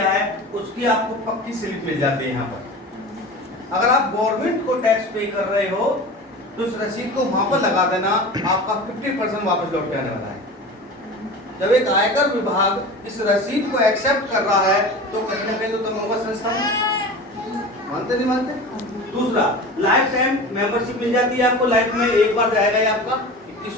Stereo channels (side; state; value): both; normal; correlation 0.33